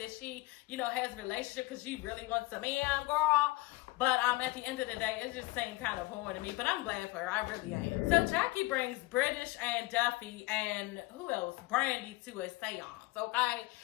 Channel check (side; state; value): right; quieter; 21.5 dB